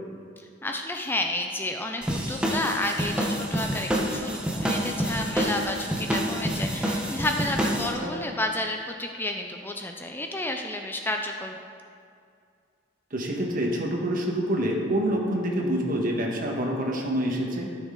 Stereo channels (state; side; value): normal; both; correlation 0.49